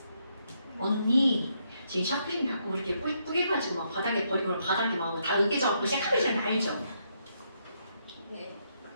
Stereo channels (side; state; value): both; inverted; correlation -0.77